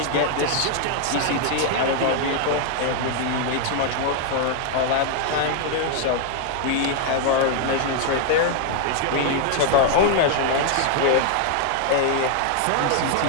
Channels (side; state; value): both; different; correlation 0.00